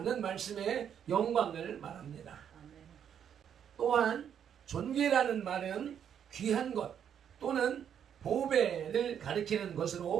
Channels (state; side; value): quieter; left; 8.7 dB